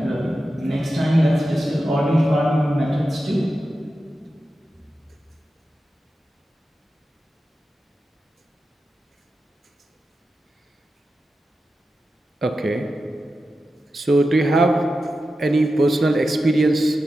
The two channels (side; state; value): both; normal; correlation 0.91